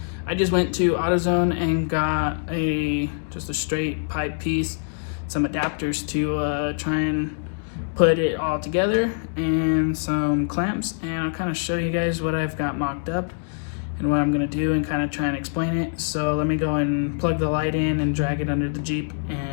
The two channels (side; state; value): right; silent; digital silence